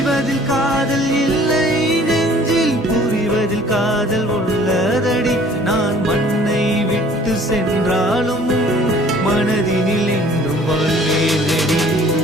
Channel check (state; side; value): normal; both; correlation 0.53